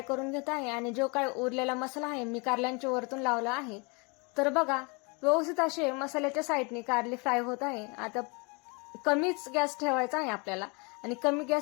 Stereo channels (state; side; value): quieter; right; 30.7 dB